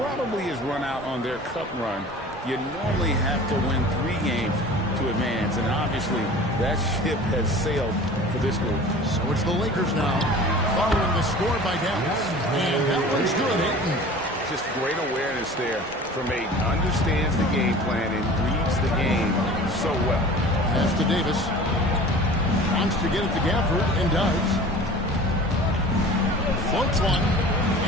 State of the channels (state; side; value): normal; both; correlation 0.41